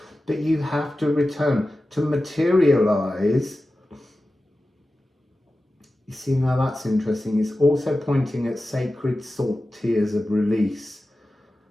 that you have to return to materialize. You see, now that's interesting. It's also pointing at sacred salt tears of release.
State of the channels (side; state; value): both; normal; correlation 0.94